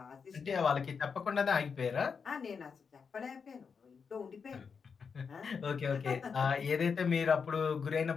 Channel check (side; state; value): right; quieter; 5.9 dB